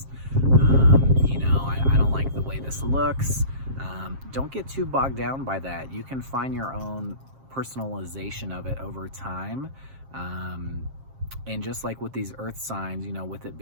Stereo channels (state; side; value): late; left; 7.5 ms